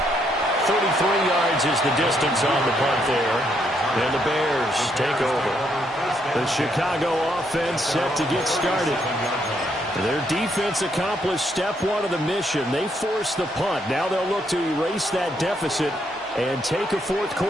33 yards is the distance on the punt there. And the Bears take over. The Chicago offense set to get started. Their defense accomplished step 1 of the mission. They forced the punt. Now they'll look to erase that deficit and take a fourth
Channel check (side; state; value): both; normal; correlation 0.74